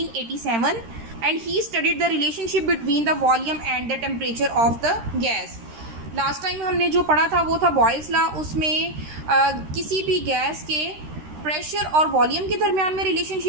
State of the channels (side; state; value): left; late; 13 ms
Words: and he studied the relationship between the volume and the temperature of the gas. Last time हमने जो पढ़ा था वो था बॉयल्स लॉ। उसमें किसी भी गैस के प्रेशर और वॉल्यूम के दरमियान में